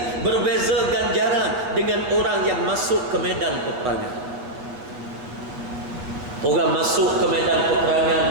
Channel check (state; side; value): late; left; 8.0 ms